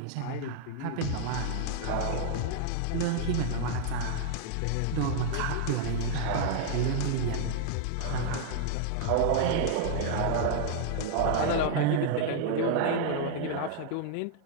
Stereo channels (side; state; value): both; different; correlation -0.01